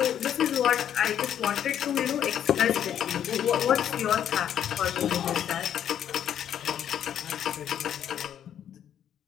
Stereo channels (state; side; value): quieter; right; 9.8 dB